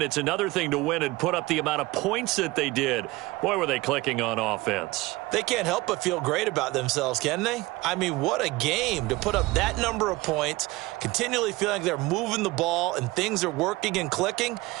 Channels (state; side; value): quieter; left; 20.7 dB